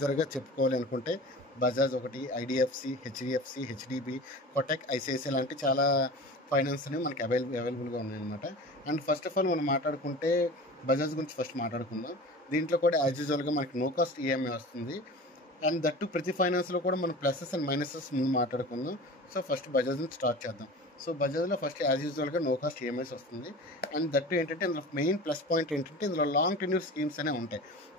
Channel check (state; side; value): normal; both; correlation 0.36